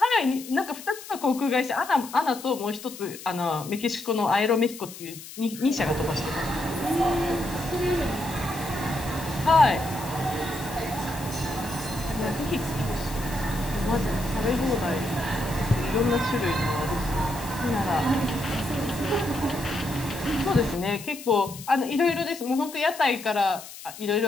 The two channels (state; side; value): noise; left; hiss, 14 dB below the sound